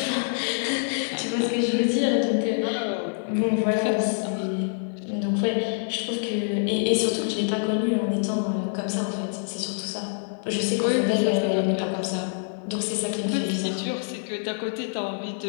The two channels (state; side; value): silent; right; 56 dB below the other